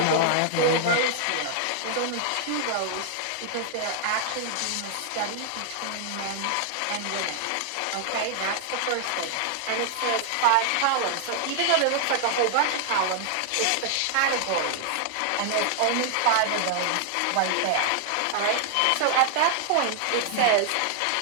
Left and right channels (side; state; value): both; different; correlation 0.00